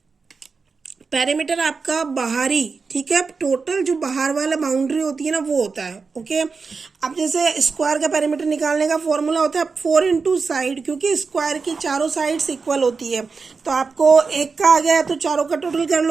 पेरीमीटर आपका बाहरी, ठीक है, टोटल जो बाहर वाला बाउंड्री होती है ना वो होता है। ओके, अब जैसे स्क्वायर का पेरीमीटर निकालने का फॉर्मूला होता है 4 इंटू साइड, क्योंकि स्क्वायर की चारों साइड्स इक्वल होती है, तो आपको एक का आ गया तो चारों का टोटल कर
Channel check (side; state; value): left; quieter; 4.8 dB